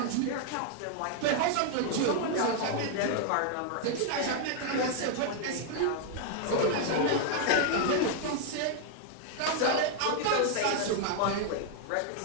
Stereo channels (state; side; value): different; both; correlation 0.00